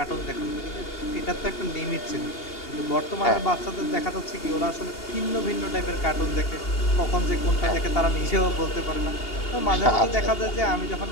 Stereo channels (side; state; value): right; late; 2.8 ms